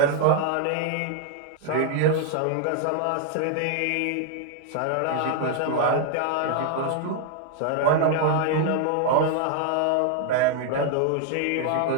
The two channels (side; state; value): both; different; correlation 0.00